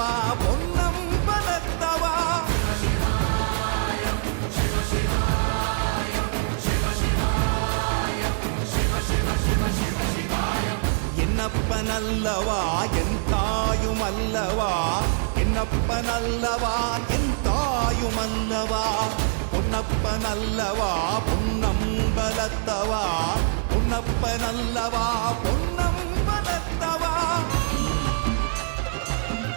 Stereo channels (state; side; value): silent; left; 62 dB below the other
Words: பொன்னம்பலத்தவா. என்னப்பனல்லவா என் தாயுமல்லவா, என்னப்பனல்லவா என் தாயுமல்லவா, பொன்னப்பனல்லவா பொன்னம்பலத்தவா, பொன்னப்பனல்லவா பொன்னம்பலத்தவா.